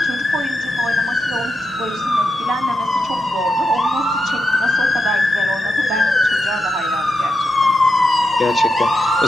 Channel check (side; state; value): both; normal; correlation 0.86